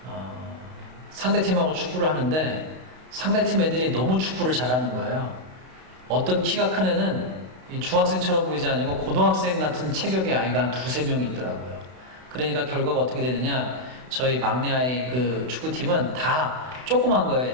상대팀하고 축구를 하는데 상대팀 애들이 너무 축구를 잘하는 거예요. 어떤 키가 큰 애는 중학생처럼 보이지 않고 고등학생 같은 체격의 아이가 한 2-3명 있더라고요. 그러니까 결과가 어떻게 되느냐, 저희 막내 아이 그 축구팀은 다 조그만 거예요,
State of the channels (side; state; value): left; late; 32 ms